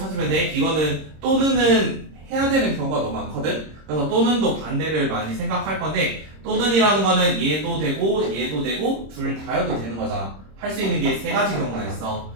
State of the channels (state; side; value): late; left; 26 ms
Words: 돼. 이거는 또는은 해야 되는 경우가 너무 많거든. 그래서 또는도 반대를 많이 생각할 건데 또는이라는 거는 얘도 되고 얘도 되고 둘 다여도 되는 거잖아. 할 수 있는 게 세 가지 경우가 있어.